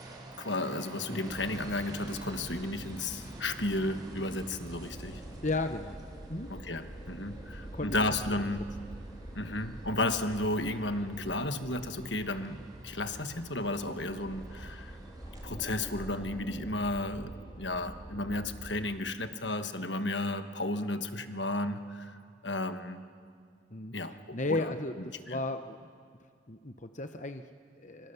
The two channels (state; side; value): normal; both; correlation 0.34